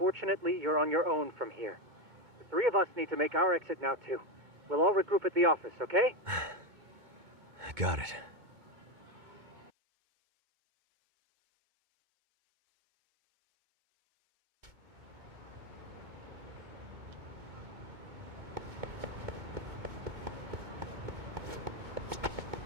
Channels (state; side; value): late; left; 2.2 ms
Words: you're on your own from here. The three of us need to make our exit now, too. We'll all regroup at the office, okay? Got it.